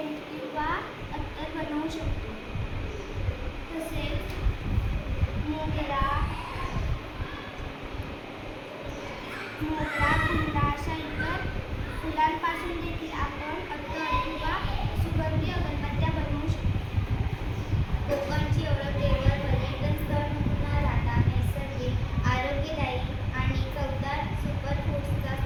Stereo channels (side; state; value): both; identical; correlation 1.00